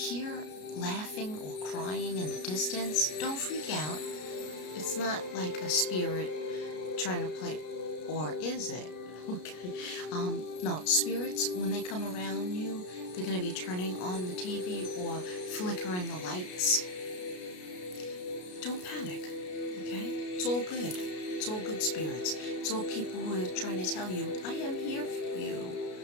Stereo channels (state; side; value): late; right; 33 ms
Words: laughing or crying in the distance. Don't freak out. It's not like a spirit trying to play, or is it? Okay. No, spirits, when they come around you, they're gonna be turning on the TV or flickering the lights. Don't panic. Okay? It's all good. It's all good spirits. It's all people who are trying to tell you, I am here for you.